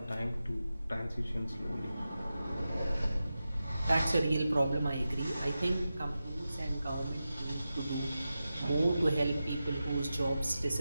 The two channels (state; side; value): inverted; both; correlation -0.92